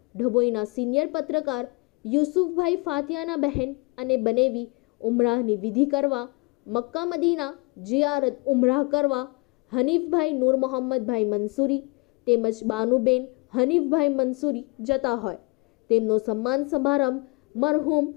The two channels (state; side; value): quieter; right; 29.5 dB